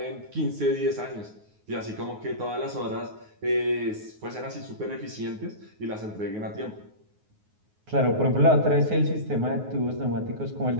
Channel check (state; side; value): late; left; 9.5 ms